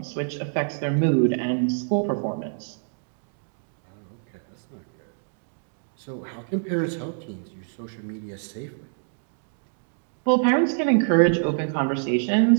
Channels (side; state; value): left; silent; digital silence